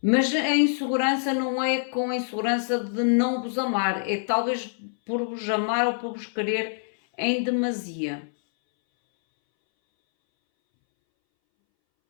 Mas a insegurança não é com a insegurança de não vos amar, é talvez por vos amar ou por vos querer em demasia.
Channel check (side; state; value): right; silent; 61 dB below the other